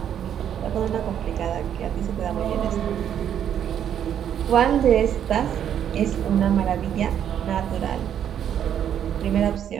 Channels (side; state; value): left; quieter; 9.5 dB